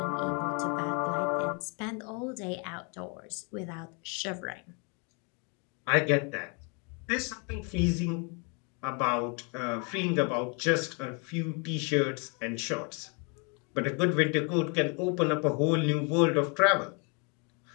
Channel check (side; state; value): right; quieter; 34.7 dB